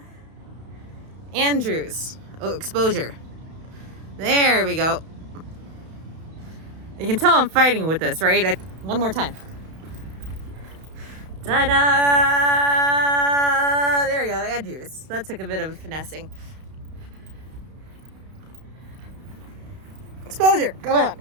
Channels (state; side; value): late; left; 32 ms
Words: Andrews. Oh, exposure. There we go. You can tell I'm fighting with this, right? One more time. Ta-da! There we go, Andrews. That took a bit of finessing. Exposure. Come on,